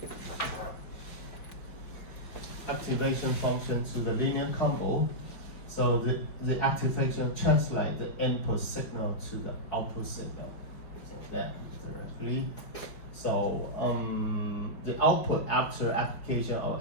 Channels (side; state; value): right; late; 5.2 ms